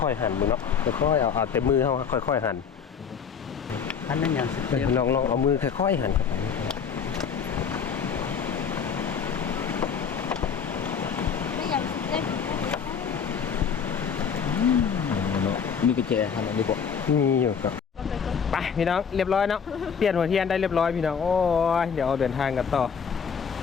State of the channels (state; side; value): quieter; right; 6.7 dB